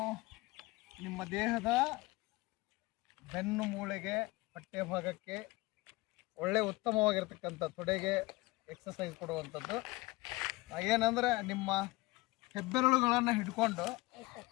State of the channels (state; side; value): quieter; right; 22.3 dB